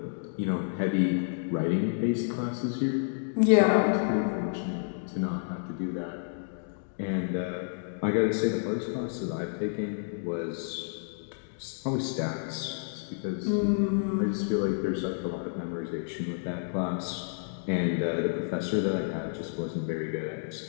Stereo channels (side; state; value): right; silent; digital silence